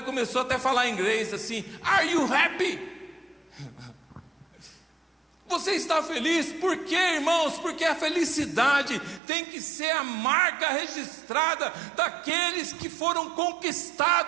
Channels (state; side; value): drops out; left; at 9.2 s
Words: começou até a falar em inglês assim: are you happy? Você está feliz? Por quê, irmãos? Porque a felicidade tem que ser a marca registrada daqueles que foram